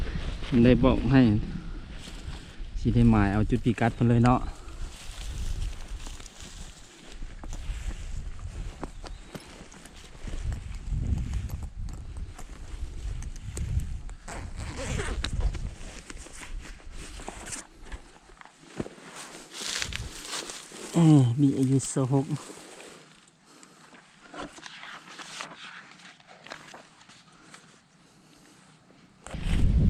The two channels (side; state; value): both; identical; correlation 1.00